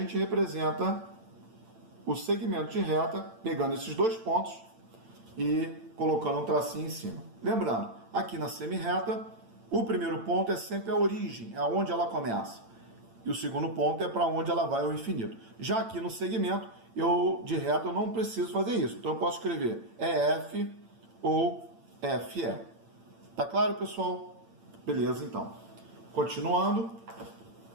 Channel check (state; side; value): late; left; 8.9 ms